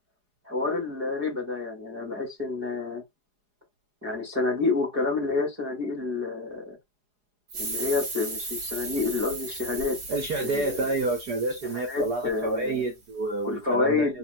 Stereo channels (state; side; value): late; left; 4.8 ms